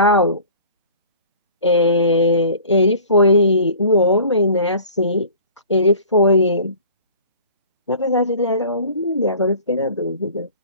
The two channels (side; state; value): both; inverted; correlation -0.45